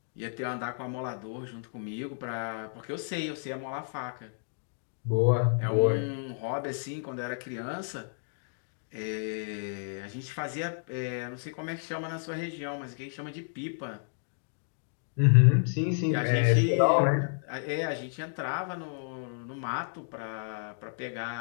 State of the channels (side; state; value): right; silent; digital silence